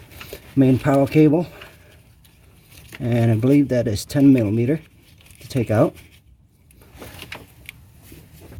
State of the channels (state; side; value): identical; both; correlation 1.00